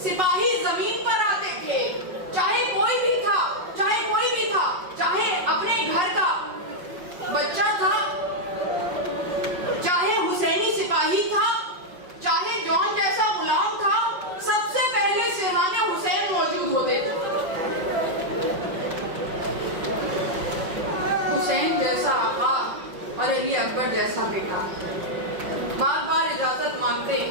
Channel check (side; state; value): left; late; 5.5 ms